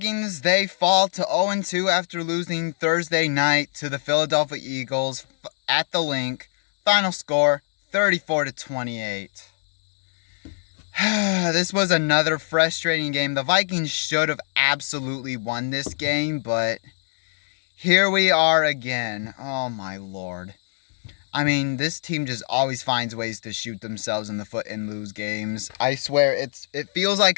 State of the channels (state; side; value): silent; right; digital silence